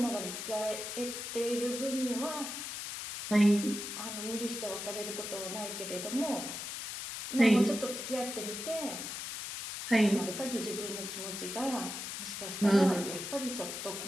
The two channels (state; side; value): noise; left; hiss, 6 dB below the sound